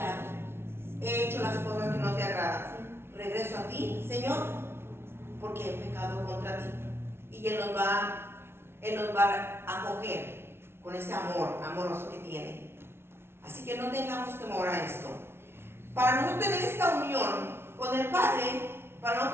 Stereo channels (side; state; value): left; late; 0.12 ms